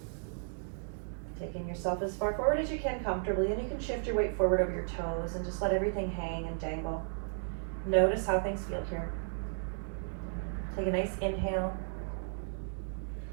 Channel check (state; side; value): silent; left; digital silence